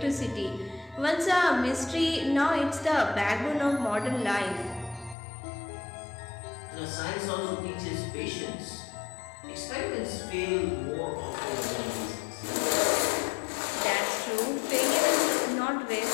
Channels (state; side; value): drops out; right; at 5.2 s